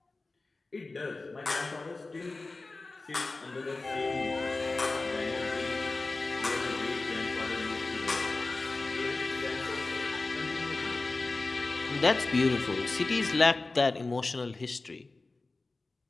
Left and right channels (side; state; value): right; quieter; 3.4 dB